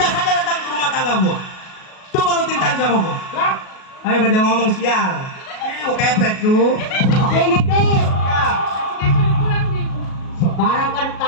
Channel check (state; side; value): late; right; 37 ms